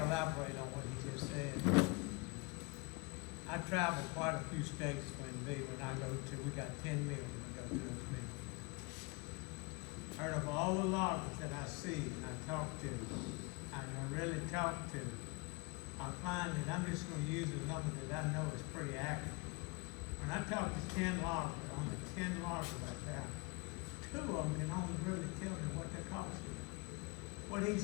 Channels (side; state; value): right; quieter; 27.5 dB